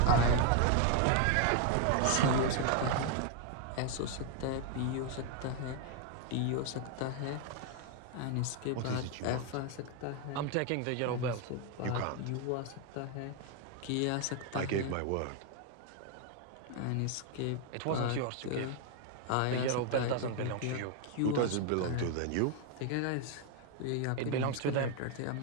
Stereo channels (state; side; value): different; both; correlation 0.00